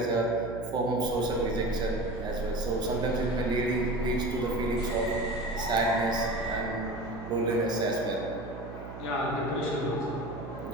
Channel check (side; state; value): right; noise; hum, 11 dB below the sound